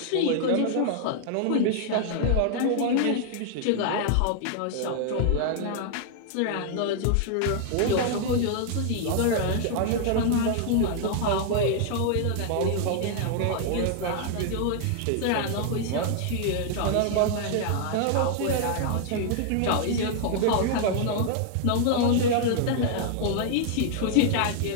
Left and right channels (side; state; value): both; different; correlation 0.00